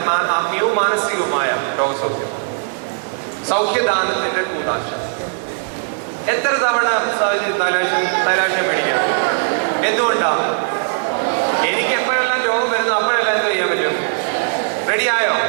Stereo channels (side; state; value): left; silent; digital silence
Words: ആത്മീയവും മാനസികവുമായ രോഗസൗഖ്യം, സൗഖ്യദാനത്തിന്റെ കൂതാശ. എത്ര തവണ തൈലാഭിഷേകം മേടിക്കണം? എന്തുകൊണ്ടാ? എനിക്ക് എപ്പോഴെല്ലാം രോഗം വരുന്നു അപ്പോഴെല്ലാം എന്ത് ചെയ്യാൻ പറ്റും? റെഡിയായോ?